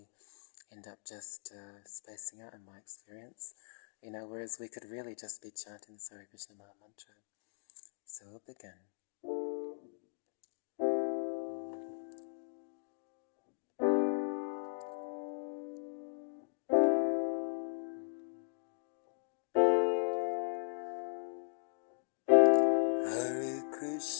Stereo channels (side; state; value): right; silent; digital silence